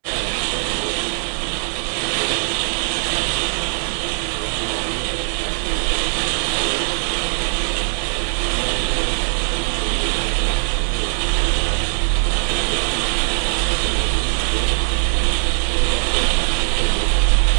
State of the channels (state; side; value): silent; left; digital silence